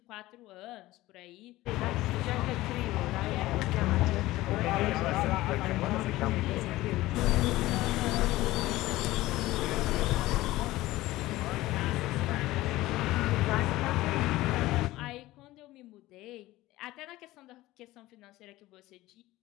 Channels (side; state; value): right; quieter; 17.5 dB